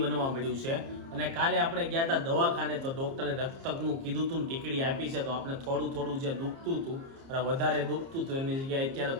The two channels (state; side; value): late; left; 30 ms